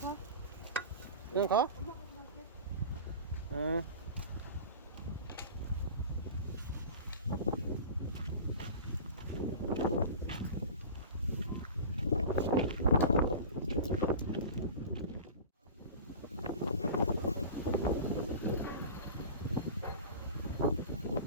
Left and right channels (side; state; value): both; inverted; correlation -0.35